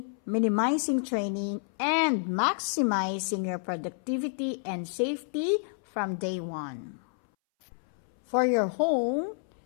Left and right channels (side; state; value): right; silent; 58 dB below the other